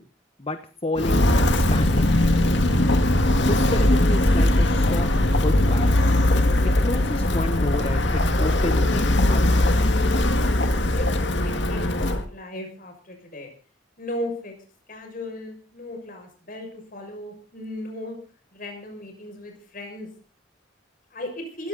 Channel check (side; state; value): both; normal; correlation 0.76